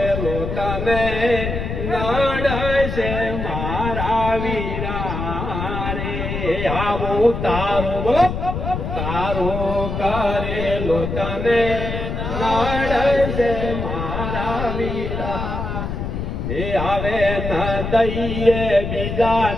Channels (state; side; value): noise; left; rumble, 4 dB below the sound